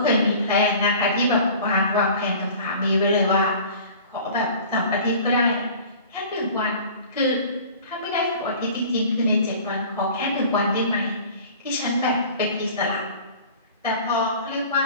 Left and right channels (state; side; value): inverted; both; correlation -0.44